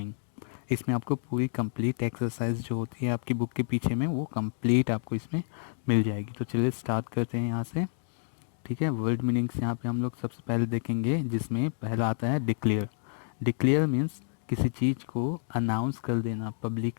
इसमें आपको पूरी complete exercise जो होती है आपकी book के पीछे में वो कंप्लीट आपको इसमें मिल जाएगी. तो चलिए स्टार्ट करते हैं यहाँ से. ठीक है, वर्ड मीनिंग्स यहाँ पे हम लोग सबसे पहले देखेंगे, जिसमें पहला आता है डिक्लेयर. डिक्लेयर मीन्स किसी चीज़ को अनाउंस कर देना,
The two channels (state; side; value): silent; right; digital silence